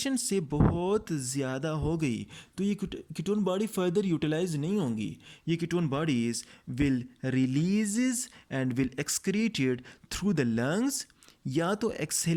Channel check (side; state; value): both; identical; correlation 1.00